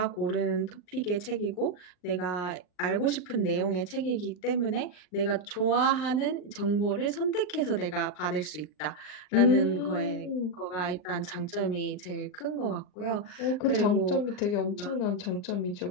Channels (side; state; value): right; late; 39 ms